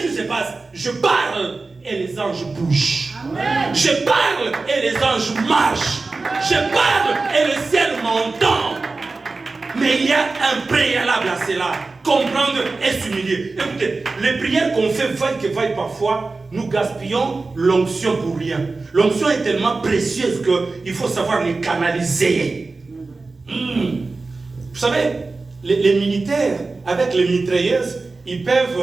qui se passe? Je parle et les anges bougent. Amen. Je parle et les anges marchent. Je parle et le ciel m'entend. Mais il y a un préalable à cela. Comprendre et s'humilier. Écoutez, les prières qu'on fait vaille que vaille parfois, nous gaspillons l'onction pour rien. L'onction est tellement précieuse qu'il faut savoir les canaliser. Vous savez, les militaires, avec les mitrailleuses, ils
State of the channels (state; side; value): quieter; left; 3.7 dB